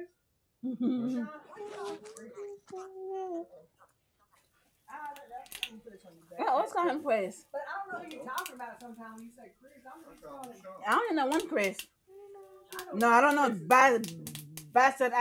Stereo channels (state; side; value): identical; both; correlation 1.00